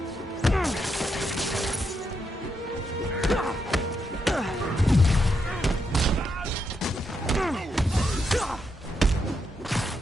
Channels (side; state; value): both; normal; correlation 0.81